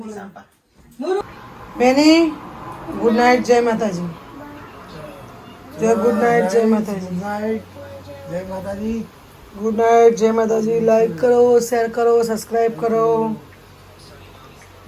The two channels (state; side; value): identical; both; correlation 1.00